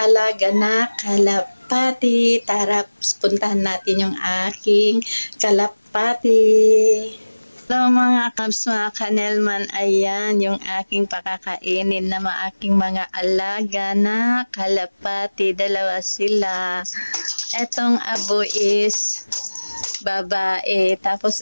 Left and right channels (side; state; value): both; inverted; correlation -1.00